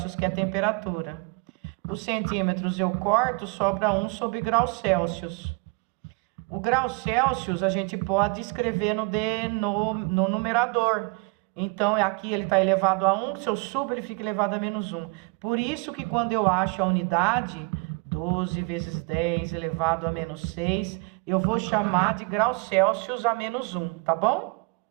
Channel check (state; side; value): quieter; left; 31.2 dB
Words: que é a temperatura. Os centímetros eu corto, sobra 1 sobre graus Celsius. O grau Celsius a gente pode escrever no numerador. Então, aqui ele está elevado a 1, se eu subo ele fica elevado a menos 1. Por isso que quando eu acho a unidade, 12 vezes 10 elevado a menos 6, eu vou chamar de graus Celsius a menos 1, tá bom?